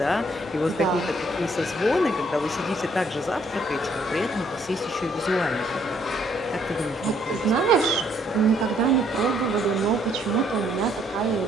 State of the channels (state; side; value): normal; both; correlation 0.67